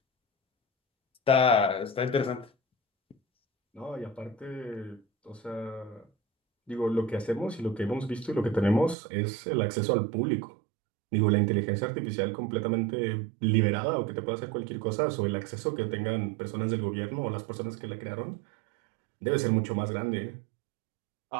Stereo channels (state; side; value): drops out; left; at 9.0 s